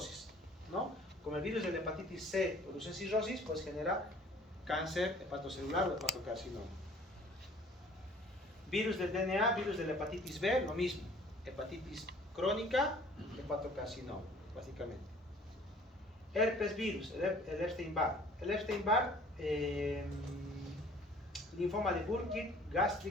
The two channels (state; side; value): normal; both; correlation 0.52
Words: ¿no? Como el virus de la hepatitis C produce cirrosis, pues genera cáncer hepatocelular o hepatocarcinoma. Virus del DNA, virus de la hepatitis B, lo mismo. Hepatitis crónica, hepatocarcinoma, básicamente. Herpes virus, el Epstein-Barr. El Epstein-Barr, linfoma de Burkitt,